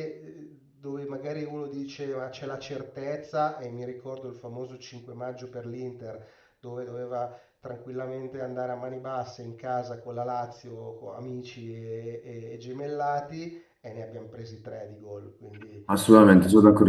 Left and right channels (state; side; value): identical; both; correlation 1.00